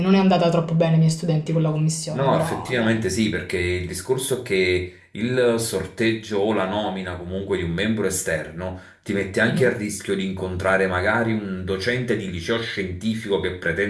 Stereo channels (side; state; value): both; identical; correlation 1.00